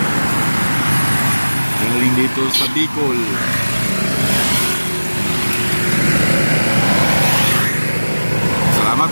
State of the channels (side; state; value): both; inverted; correlation -1.00